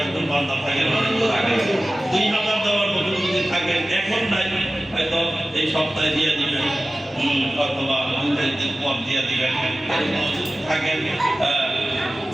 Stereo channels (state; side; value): normal; both; correlation 0.96